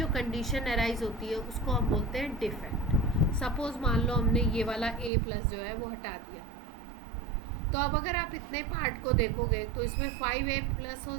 कंडीशन अराइज होती है उसको हम बोलते हैं डिफेक्ट। सपोज मान लो हमने ये वाला A+ जो है वो हटा दिया, तो अब अगर आप इतने पार्ट को देखोगे तो इसमें 5A+ हो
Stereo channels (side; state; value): left; drops out; at 5.1 s